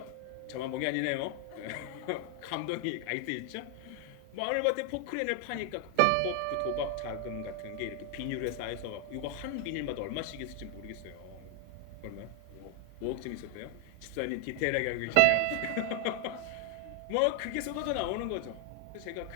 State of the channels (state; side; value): different; both; correlation 0.00